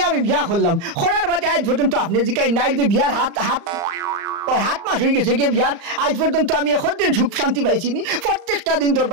আমি বিয়া করলাম করার বাদে আজ পর্যন্ত আপনি জিকাই নাই যে বিয়ার হাত মাস হয়ে গেছে গিয়ে বিয়ার আজ পর্যন্ত আমি এখন দিন সুখ শান্তি পাইছিনি প্রত্যেকটা দিন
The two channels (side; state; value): left; late; 35 ms